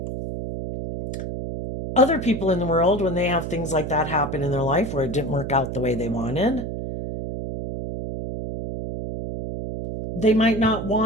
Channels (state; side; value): noise; right; hum, 5 dB below the sound